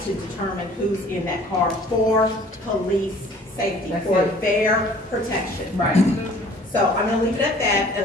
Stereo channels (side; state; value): both; normal; correlation 0.52